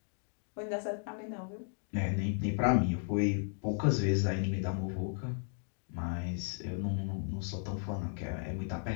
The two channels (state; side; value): silent; right; 54 dB below the other